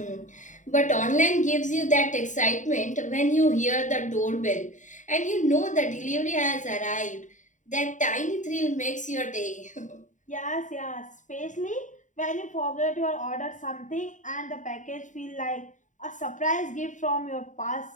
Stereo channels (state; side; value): late; right; 0.36 ms